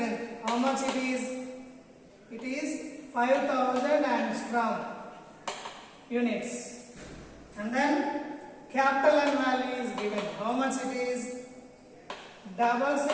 How much it is? It is 5000 angstrom units. And then capital N value is given. How much it is?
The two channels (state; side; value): identical; both; correlation 1.00